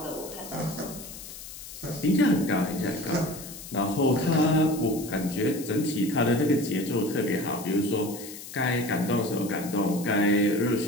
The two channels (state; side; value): noise; left; hiss, 13 dB below the sound